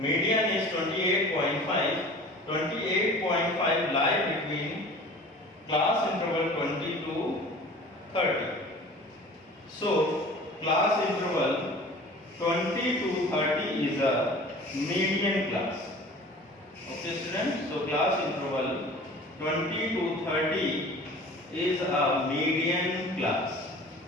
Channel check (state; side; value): normal; both; correlation 0.43